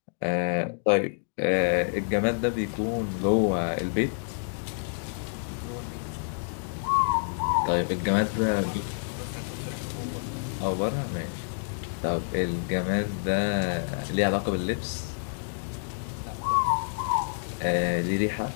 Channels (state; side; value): silent; right; digital silence